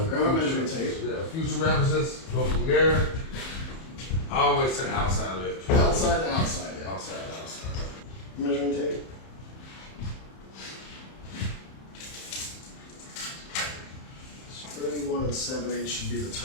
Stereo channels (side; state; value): right; late; 31 ms